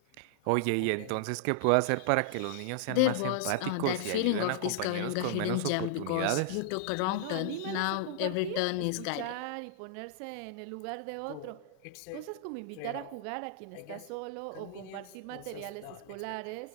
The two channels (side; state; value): both; different; correlation -0.01